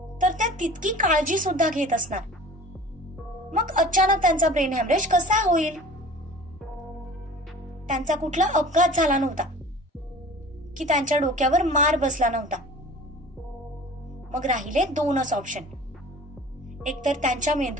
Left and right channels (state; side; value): normal; both; correlation 0.43